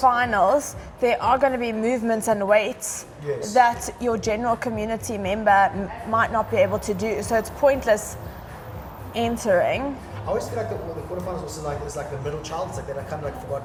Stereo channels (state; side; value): identical; both; correlation 1.00